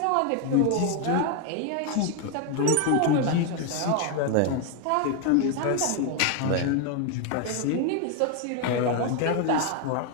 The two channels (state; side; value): different; both; correlation 0.01